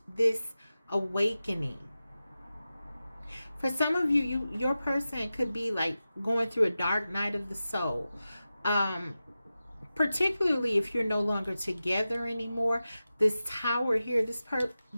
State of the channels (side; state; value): both; inverted; correlation -0.94